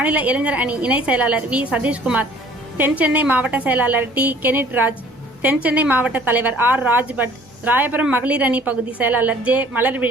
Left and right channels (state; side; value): normal; both; correlation 0.54